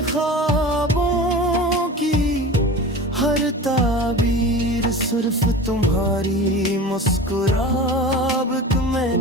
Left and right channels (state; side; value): normal; both; correlation 0.34